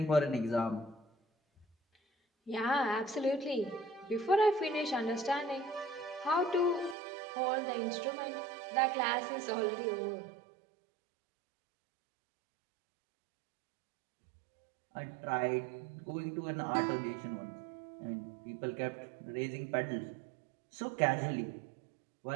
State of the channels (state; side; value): drops out; left; at 7.0 s